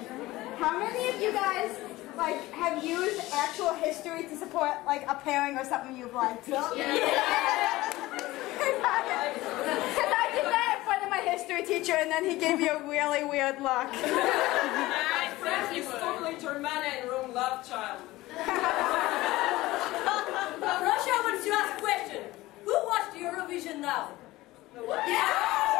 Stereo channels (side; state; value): right; quieter; 18.3 dB